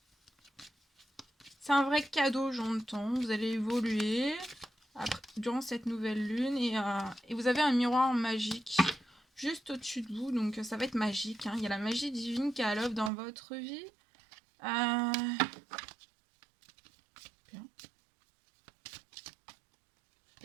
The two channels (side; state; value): left; drops out; at 13.1 s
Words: C'est un vrai cadeau, j'entends. Vous allez évoluer durant cette nouvelle lune et vous avez un miroir magique juste au-dessus de vous, donc ça va être magique. Hein. Il y a la magie divine qui est à l'œuvre dans votre vie. Bien.